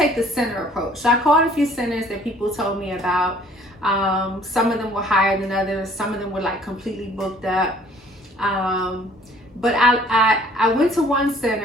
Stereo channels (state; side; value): normal; both; correlation 0.56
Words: the center approach. So I called a few centers that people told me about. Some of them were higher than others. Some of them were like completely booked up. But I went to one